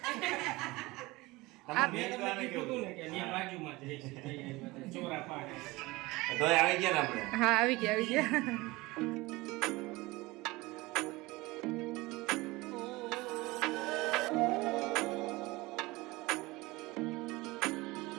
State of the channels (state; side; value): quieter; left; 21.6 dB